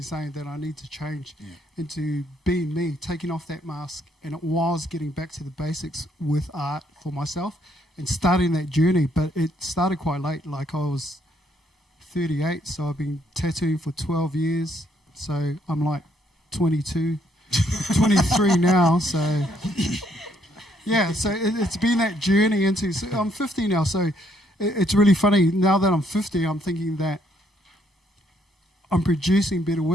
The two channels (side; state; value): both; normal; correlation 0.70